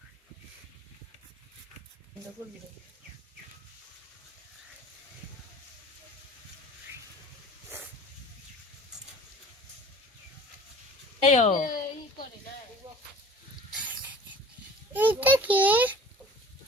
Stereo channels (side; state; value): both; normal; correlation 0.45